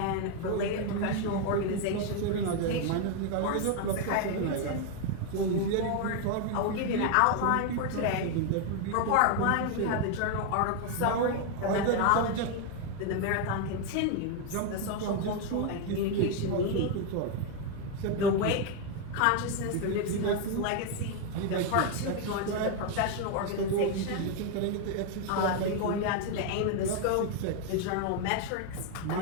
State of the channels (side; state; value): both; different; correlation 0.01